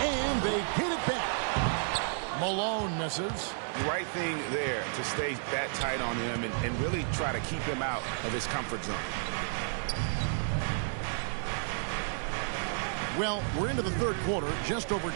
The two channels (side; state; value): left; silent; digital silence